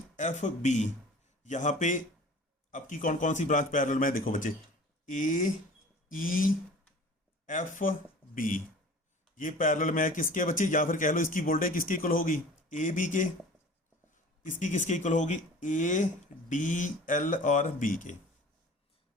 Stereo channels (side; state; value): both; normal; correlation 0.43